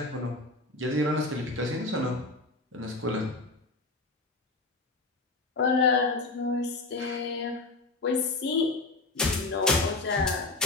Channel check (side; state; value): right; quieter; 3.3 dB